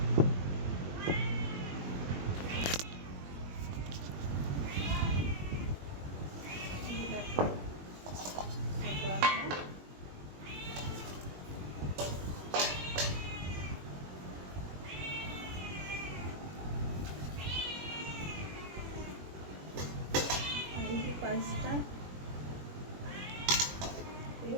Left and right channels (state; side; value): late; left; 21 ms